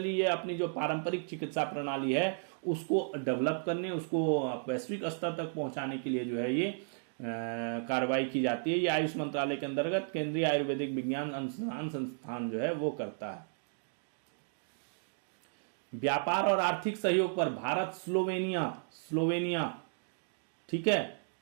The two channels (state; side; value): silent; left; digital silence